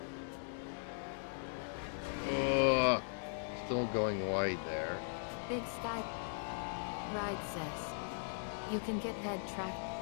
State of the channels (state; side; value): silent; right; digital silence